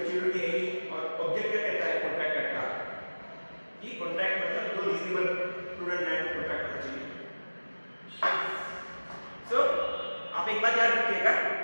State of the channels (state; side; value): inverted; both; correlation -1.00